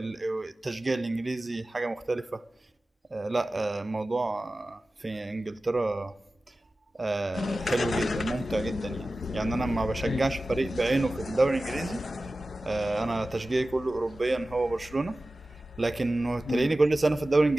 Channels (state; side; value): normal; both; correlation 0.96